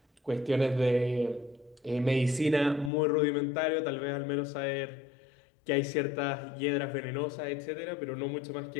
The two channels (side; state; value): right; drops out; at 2.9 s